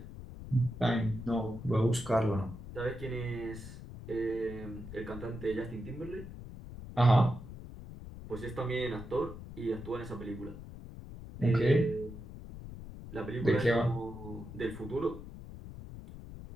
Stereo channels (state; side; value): noise; left; rumble, 12 dB below the sound